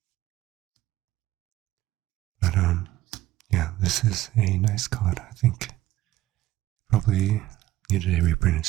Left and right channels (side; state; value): left; quieter; 15.2 dB